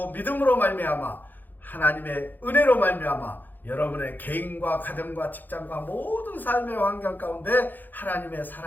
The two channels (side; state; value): right; late; 0.087 ms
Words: 믿음으로 말미암아 하나님의 은혜로 말미암아 여러분의 개인과 가정과 직장과 모든 삶의 환경 가운데 하나님의